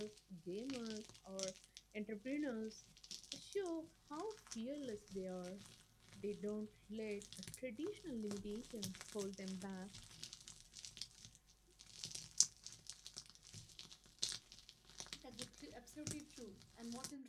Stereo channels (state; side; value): identical; both; correlation 1.00